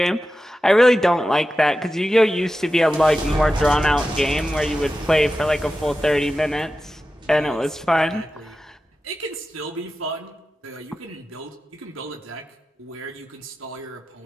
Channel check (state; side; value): normal; both; correlation 0.93